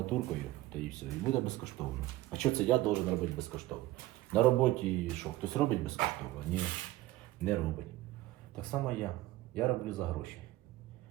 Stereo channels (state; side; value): quieter; left; 17.1 dB